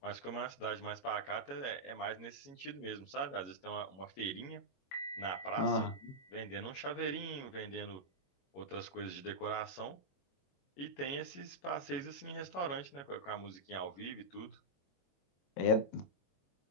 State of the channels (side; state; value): right; late; 22 ms